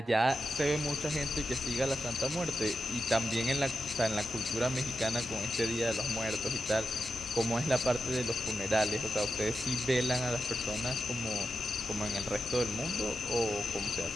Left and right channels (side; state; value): both; normal; correlation 0.89